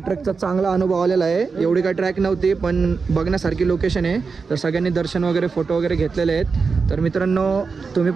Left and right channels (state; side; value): quieter; left; 4.9 dB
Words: ट्रेकचा चांगला अनुभव आलेला आहे. एवढी काही ट्रॅक नव्हती पण बघण्यासारखी लोकेशन आहे. तर सगळ्यांनी दर्शन वगैरे फोटो वगैरे घेतलेले आहेत. तर मित्रांनो तुम्ही